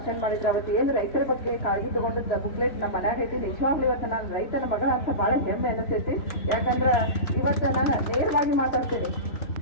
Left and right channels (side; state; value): right; late; 3.0 ms